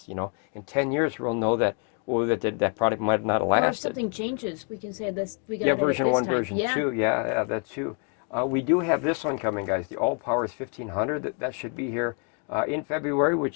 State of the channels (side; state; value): right; quieter; 37.8 dB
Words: You know, in 10 years we'll know that that product might not have lasted. Or if something changes, we can say this. We got yeah, it version this 1, time. version 2. Yeah, that's true. We do have this one coming, guys. The Allpowers 1500. That should be here in February,